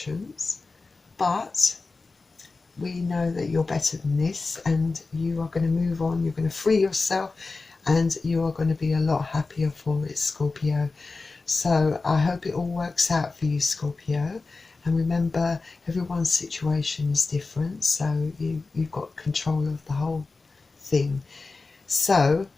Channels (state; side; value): quieter; right; 3.8 dB